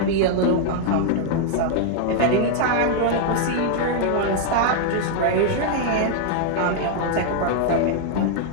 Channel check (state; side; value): different; both; correlation -0.01